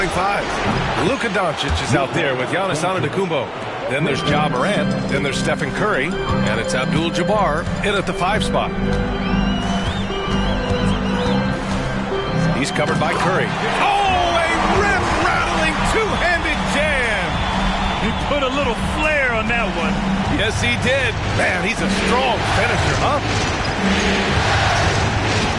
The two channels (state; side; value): identical; both; correlation 1.00